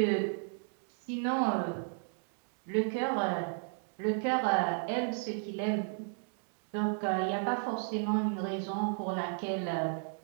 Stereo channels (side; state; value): left; silent; 55 dB below the other